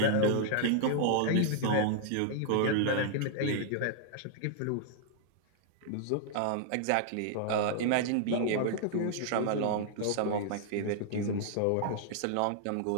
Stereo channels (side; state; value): both; different; correlation -0.01